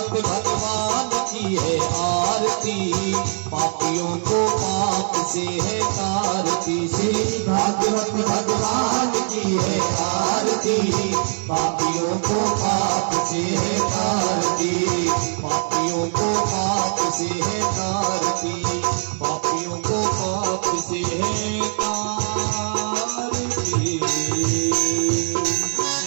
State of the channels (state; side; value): silent; left; digital silence